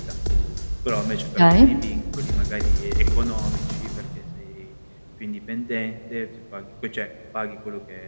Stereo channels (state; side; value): inverted; both; correlation -1.00